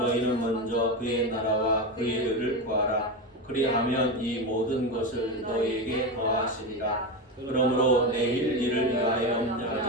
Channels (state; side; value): normal; both; correlation 0.17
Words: 먼저 그의 나라와 그의 의를 구하라. 그리하면 이 모든 것을 너희에게 더하시리라. 그러므로 내일 일을 위하여